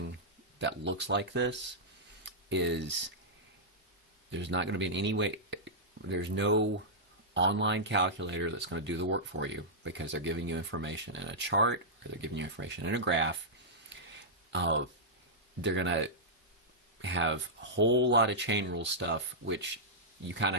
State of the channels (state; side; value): normal; both; correlation -0.11